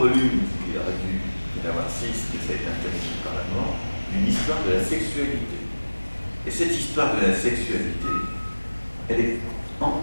il aurait dû en avoir 6, mais ça a été interdit par la mort, une histoire de la sexualité. Et cette histoire de la sexualité, elle est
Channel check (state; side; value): inverted; both; correlation -1.00